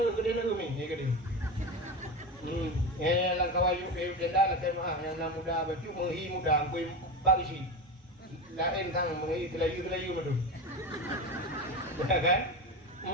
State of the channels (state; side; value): normal; both; correlation 0.22